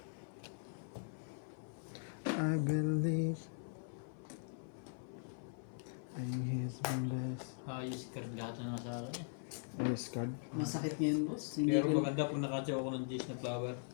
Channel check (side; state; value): right; silent; 51 dB below the other